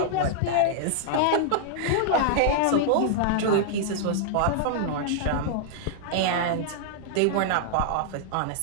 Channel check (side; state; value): both; different; correlation -0.01